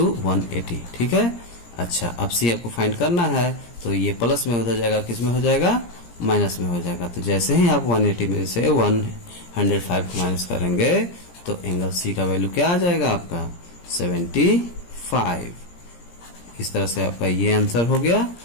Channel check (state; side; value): late; right; 17 ms